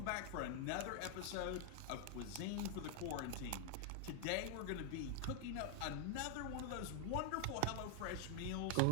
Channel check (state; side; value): different; both; correlation 0.00